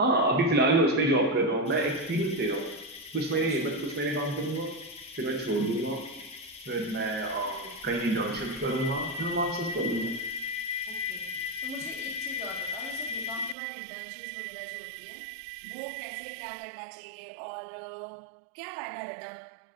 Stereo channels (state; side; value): drops out; left; at 13.6 s